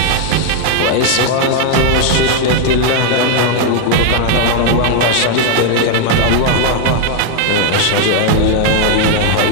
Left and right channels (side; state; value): both; different; correlation 0.00